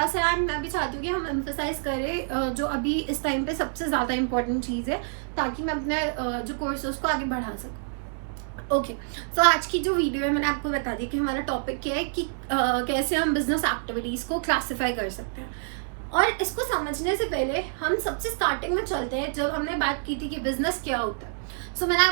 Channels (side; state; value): left; silent; digital silence